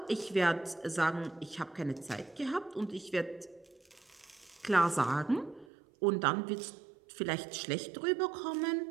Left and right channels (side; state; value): left; drops out; at 5.7 s